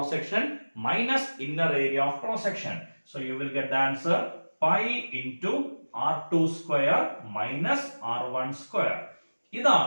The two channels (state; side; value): inverted; both; correlation -1.00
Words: section minus inner area of cross section. So you will get the answer pi into R2 square minus R1 square.